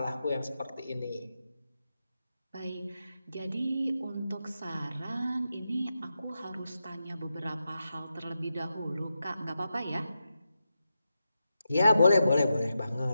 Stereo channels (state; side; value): inverted; both; correlation -0.89